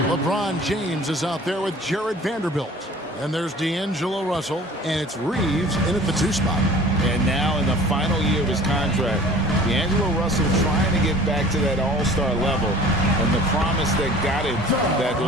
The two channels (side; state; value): both; normal; correlation 0.46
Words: LeBron James is out there with Jared Vanderbilt. And there's D'Angelo Russell, and it's Reeves in at the 2 spot. And now in the final year of his contract, D'Angelo Russell trying to get back to that all-star level and the promise that got him that